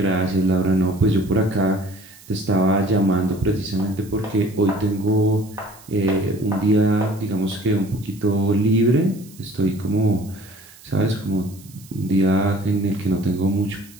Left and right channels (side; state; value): right; noise; hiss, 23 dB below the sound